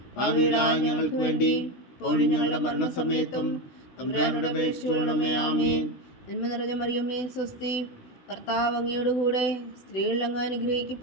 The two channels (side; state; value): right; late; 16 ms